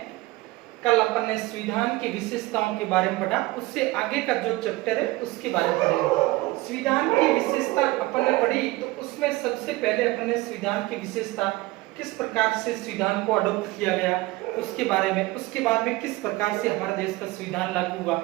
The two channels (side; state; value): left; quieter; 20.2 dB